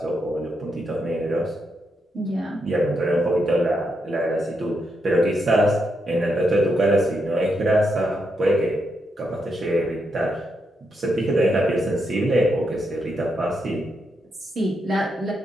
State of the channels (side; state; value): both; normal; correlation 0.82